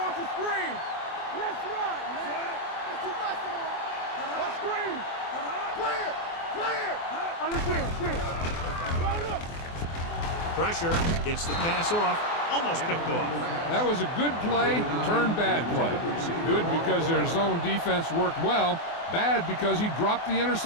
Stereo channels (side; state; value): right; late; 24 ms